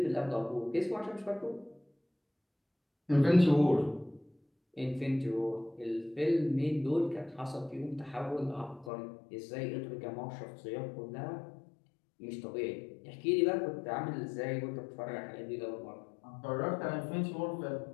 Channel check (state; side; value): drops out; right; at 8.9 s